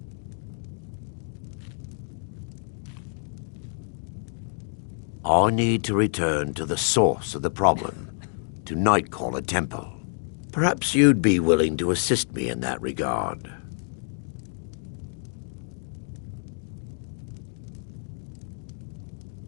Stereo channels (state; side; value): silent; right; 60 dB below the other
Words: I need to return to the source of the problem, to Nightcaller Temple. Perhaps you'd be willing to assist me in that regard.